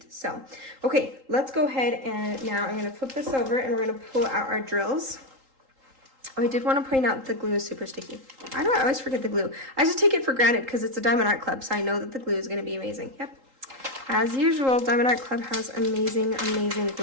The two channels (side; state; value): left; late; 3.8 ms